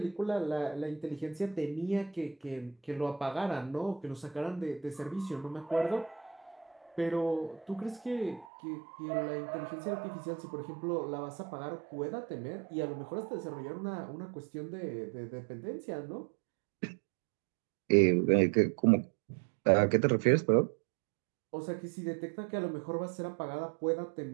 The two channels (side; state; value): left; drops out; at 8.5 s